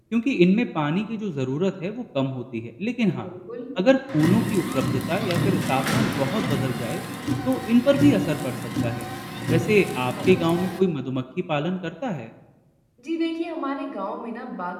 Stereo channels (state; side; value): identical; both; correlation 1.00